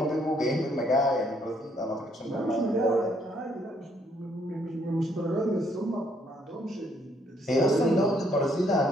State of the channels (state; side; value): normal; both; correlation 0.69